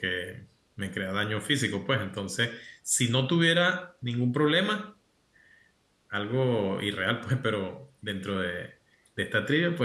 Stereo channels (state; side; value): identical; both; correlation 1.00